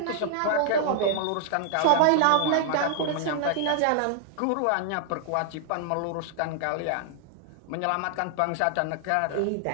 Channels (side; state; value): both; different; correlation 0.00